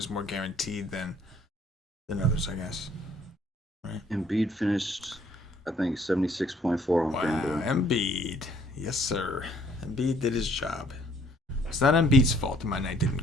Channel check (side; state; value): both; normal; correlation 0.62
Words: more guaranteed than others, I guess. Right? Embiid finished, I think, 76.4 on FanDuel. Embiid. Yes, sir. Embiid did his job. It's not Embiid's fault that my night didn't